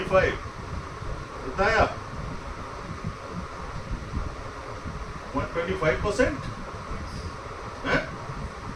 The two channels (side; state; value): both; identical; correlation 1.00